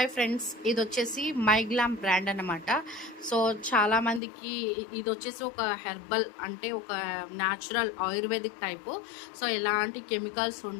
ఫ్రెండ్స్, ఇది వచ్చేసి మైగ్లామ్ బ్రాండ్ అన్నమాట. సో చాలామందికి ఇది వచ్చేసి ఒక హెర్బల్, అంటే ఒక న్యాచురల్ ఆయుర్వేదిక్ టైపు. సో ఎలాంటి కెమికల్స్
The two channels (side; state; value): right; drops out; at 4.2 s